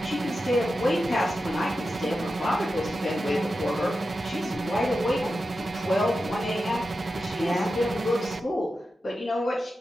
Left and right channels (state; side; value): normal; both; correlation 0.91